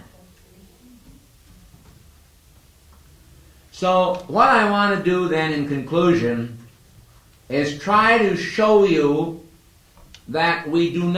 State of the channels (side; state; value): both; identical; correlation 1.00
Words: So what I want to do then in conclusion is try to show you that we do